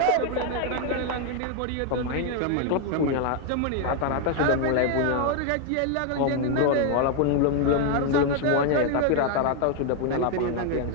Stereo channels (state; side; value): different; both; correlation 0.01